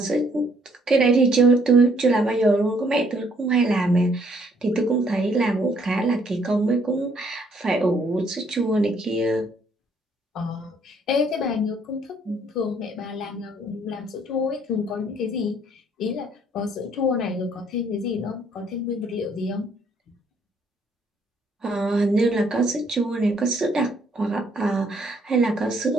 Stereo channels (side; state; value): both; normal; correlation 0.66